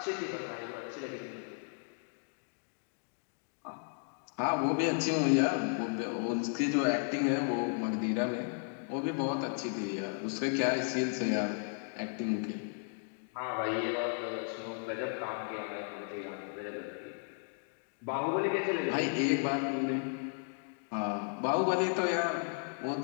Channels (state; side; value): silent; right; 55 dB below the other